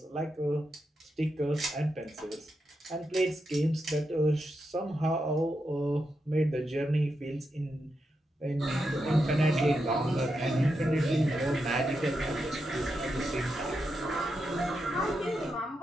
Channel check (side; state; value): both; normal; correlation 0.86